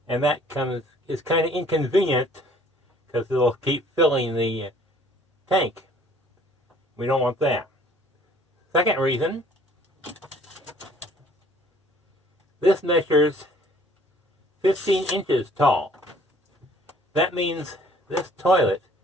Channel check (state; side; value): normal; both; correlation 0.57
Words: And that is kind of inconvenient because it'll keep filling the tank. We don't want that. Second reason, this measures 15 inches tall. That means this toilet